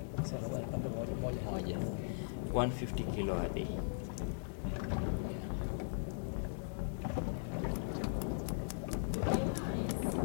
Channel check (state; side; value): silent; right; 52 dB below the other